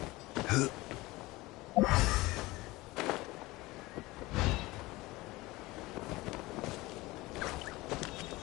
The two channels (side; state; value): right; quieter; 20.5 dB